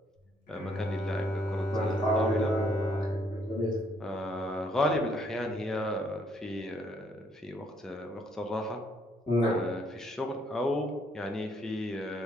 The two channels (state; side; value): normal; both; correlation 0.69